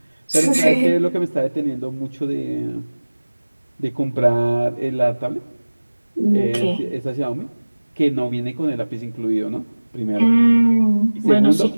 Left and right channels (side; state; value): both; inverted; correlation -1.00